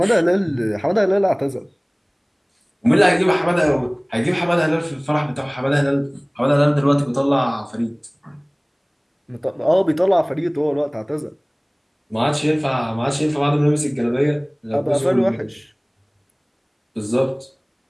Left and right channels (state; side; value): identical; both; correlation 1.00